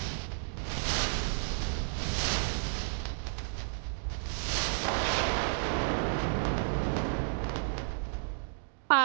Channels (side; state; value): left; silent; digital silence